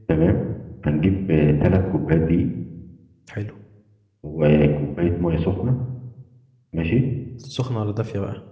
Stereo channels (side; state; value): both; identical; correlation 1.00